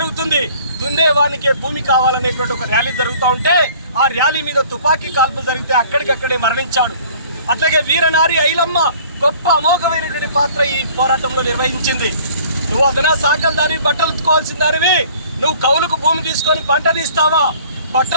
దున్నేవానికే భూమి కావాలనేటువంటి ఒక ర్యాలీ జరుగుతూ ఉంటే ఆ ర్యాలీ మీద తుపాకీ కాల్పులు జరిగితే అక్కడికక్కడే మరణించాడు. అట్లాగే వీరనారి ఐలమ్మ గొప్ప అమోఘమైనటువంటి పాత్ర ఈ పోరాటంలో నిర్వహించింది. నువ్వు అదనా సాకల దానివి, బట్టలు ఉత్తుకోవాల్సిన దానివి, నువ్వు కౌలుకు భూమి తీసుకొని పంట తీస్తావా?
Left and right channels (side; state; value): both; inverted; correlation -0.52